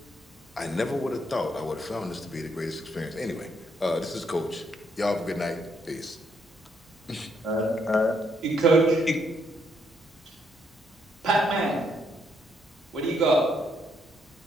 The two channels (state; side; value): normal; both; correlation 0.74